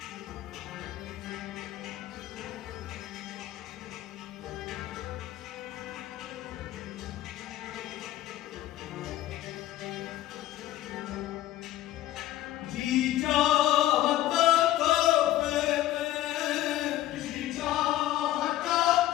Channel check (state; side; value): quieter; right; 14.3 dB